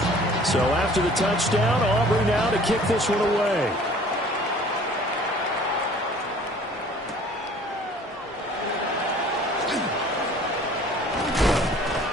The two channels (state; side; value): normal; both; correlation 0.51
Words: So after the touchdown, Aubrey now to kick this one away.